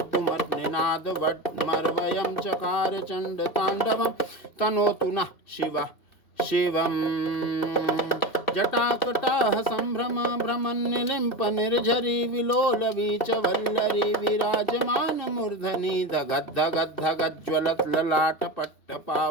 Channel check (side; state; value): right; late; 2.6 ms